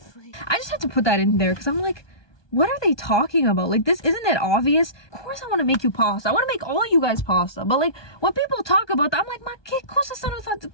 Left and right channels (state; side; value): late; right; 1.2 ms